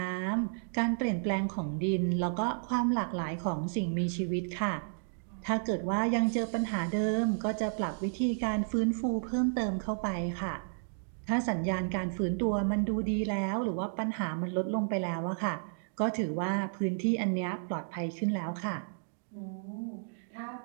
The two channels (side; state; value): left; silent; digital silence